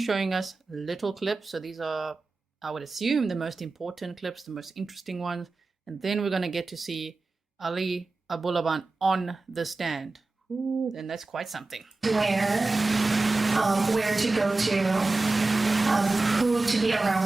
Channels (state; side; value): quieter; left; 3.4 dB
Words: us little clips. So these are, I would assume, the most important clips, the most interesting ones. And then we're going to get to see Ana Abulaban on the stand. Ooh, then that's quite something. Where to go to, who to be